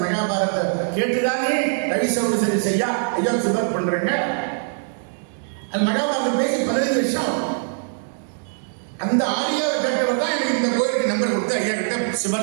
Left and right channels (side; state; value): left; silent; digital silence